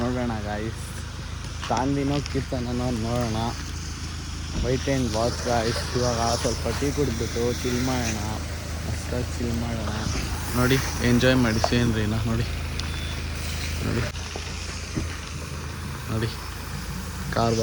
ಗಾಯ್ಸ್. ತಾಂದಿನೋ ಕೀರ್ತನೋ ನೋಡೋಣ. White and watch guys. ಇವಾಗ ಸ್ವಲ್ಪ ಟೀ ಕುಡಿದ್ಬಿಟ್ಟು ಚಿಲ್ ಮಾಡೋಣ. ಮಸ್ತಾಗಿ ಚಿಲ್ ಮಾಡೋಣ ನೋಡಿ. ಎಂಜಾಯ್ ಮಾಡಿ ಸೀನ್ರಿನ ನೋಡಿ. ನೋಡಿ ಕಾರ್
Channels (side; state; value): both; identical; correlation 1.00